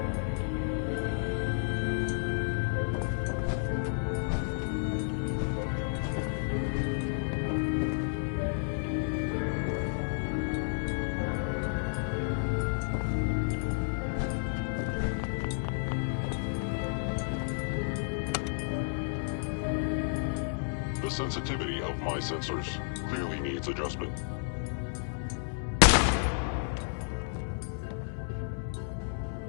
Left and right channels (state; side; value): silent; right; 57 dB below the other